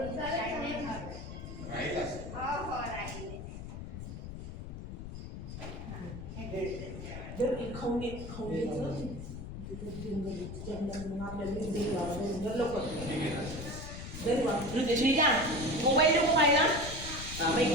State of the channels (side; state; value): left; noise; rumble, 9 dB below the sound